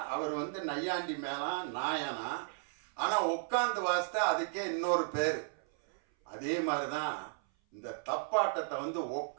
அவர் வந்து நையாண்டி மேளம் நாயனா. ஆனால் உட்காந்து வாசித்தா அதுக்கே இன்னொரு பேர். அதே மாதிரி தான் இந்த தப்பாட்டத்தை வந்து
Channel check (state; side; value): silent; left; 55 dB below the other